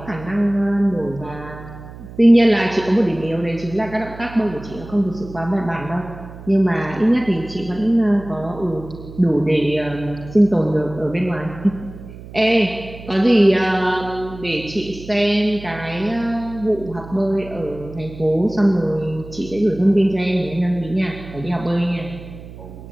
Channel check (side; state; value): right; noise; hum, 15 dB below the sound